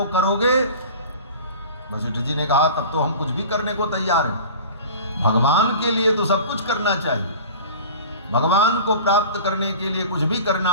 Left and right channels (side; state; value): both; inverted; correlation -0.38